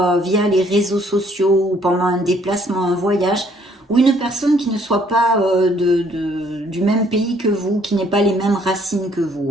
via les réseaux sociaux ou pendant un déplacement, un voyage, ou une personne qui ne soit pas du même pays que vous, qui n'ait pas les mêmes racines que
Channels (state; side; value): normal; both; correlation 0.64